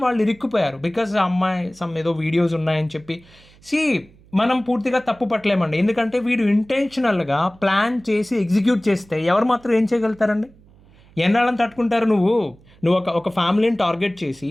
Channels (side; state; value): right; noise; hum, 27 dB below the sound